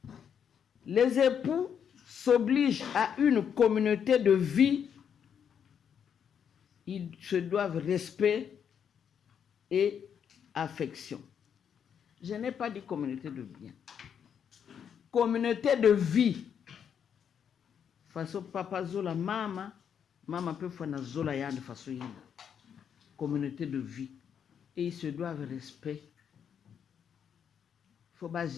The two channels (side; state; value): right; quieter; 7.9 dB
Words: Les époux s'obligent à une communauté de vie, ils se doivent respect et affection. Je n'ai pas dit communauté de bien. Communauté de vie. Façon papa zola mama. Maman peut faire une zola ya de façon yinda. Communauté de vie. Et ils se doivent respect. Il faut pas